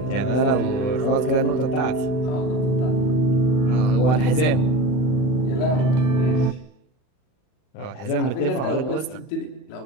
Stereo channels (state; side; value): late; right; 40 ms